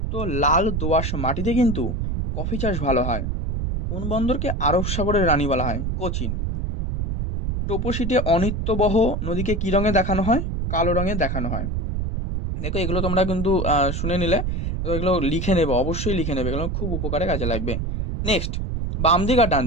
লাল দোআঁশ মাটিতে কিন্তু কফি চাষ ভালো হয়। কোন বন্দরকে আরব সাগরের রানী বলা হয়? কোচিন। টোপোশিটে অনিত্যবহ নদীকে কি রঙে দেখানো হয়? কালো রঙে দেখানো হয়। দেখো এগুলো তোমরা কিন্তু শুনে নিলে, এগুলো লিখে নেবে, অবশ্যই লিখে নেবে, এগুলো খুব উপকারে কাজে লাগবে। নেক্সট, বাম দিক আর ডান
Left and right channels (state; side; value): noise; right; rumble, 1 dB below the sound